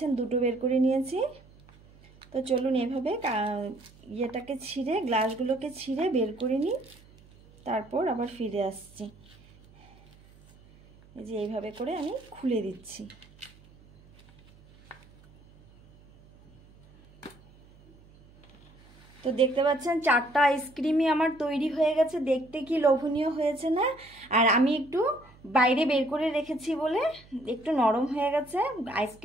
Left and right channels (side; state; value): right; noise; hum, 26 dB below the sound